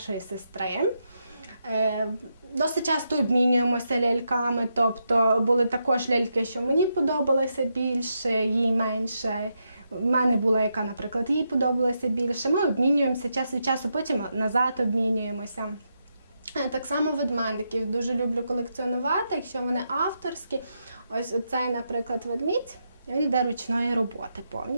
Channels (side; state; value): both; inverted; correlation -0.83